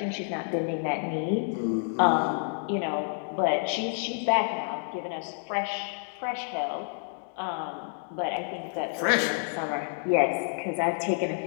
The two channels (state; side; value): silent; right; 59 dB below the other